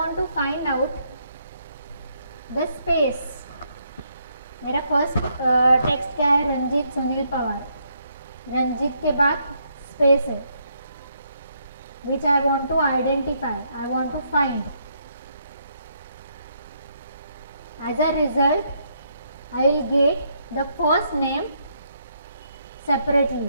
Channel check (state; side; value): inverted; both; correlation -0.74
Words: to find out the space. मेरा first text क्या है, रंजीत सुनील पवार. रंजीत के बाद space है, which I want to identify, I want to find. As a result I will get the first name